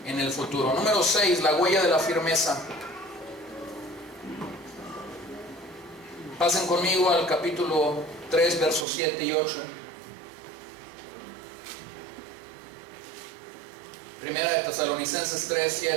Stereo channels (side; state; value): left; drops out; at 8.8 s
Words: en el futuro. Número 6, la huella de la firmeza. Pasen conmigo al capítulo 3, versos 7 y 8. Primera de Tesalonicenses 3,